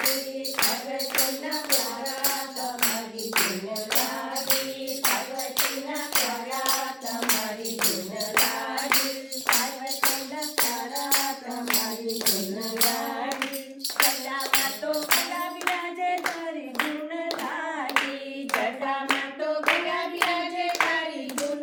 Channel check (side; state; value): both; identical; correlation 1.00